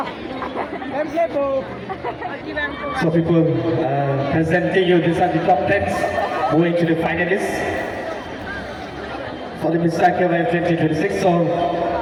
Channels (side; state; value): both; identical; correlation 1.00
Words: So people presenting you, these are the top 10s moving to the finalists for the Mr. KYF 2026. So